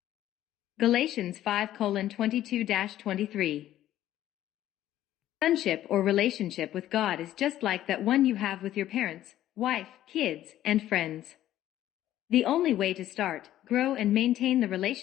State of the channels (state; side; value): quieter; right; 13.0 dB